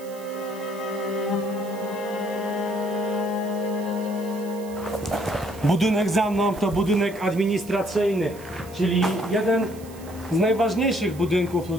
Budynek za mną to budynek administracyjny, czyli jeden z najważniejszych budynków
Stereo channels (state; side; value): noise; right; hiss, 21 dB below the sound